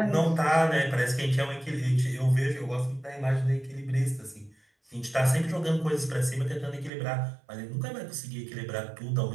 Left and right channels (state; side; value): drops out; left; at 6.9 s